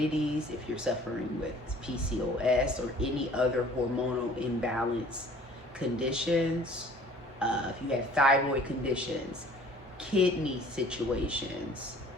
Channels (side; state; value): both; normal; correlation 0.51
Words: if you're suffering with PCOS or any other hormonal imbalance conditions, if you have thyroid conditions, kidney situations,